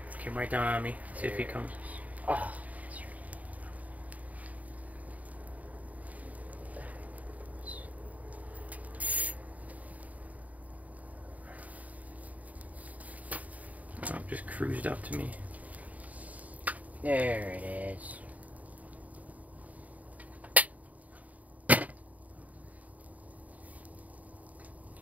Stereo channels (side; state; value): left; late; 0.072 ms